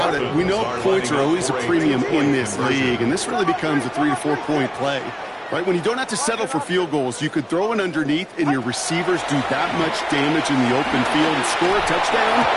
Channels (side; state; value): both; identical; correlation 1.00